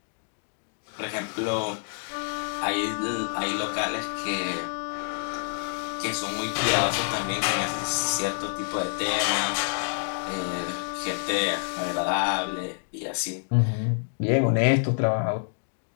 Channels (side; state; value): right; silent; digital silence